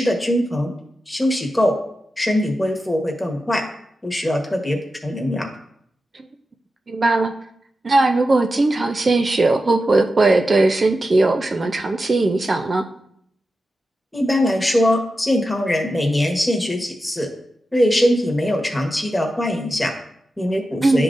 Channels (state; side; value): normal; both; correlation 0.91